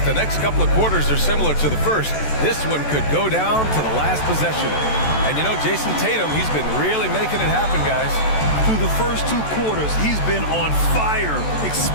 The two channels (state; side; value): late; right; 14 ms